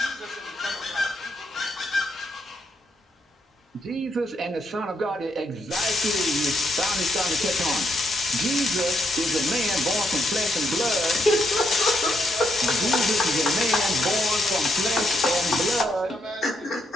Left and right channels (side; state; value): both; normal; correlation 0.77